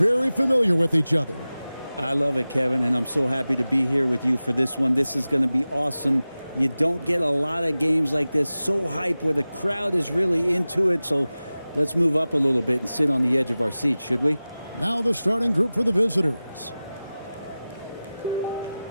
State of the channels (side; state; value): both; inverted; correlation -0.96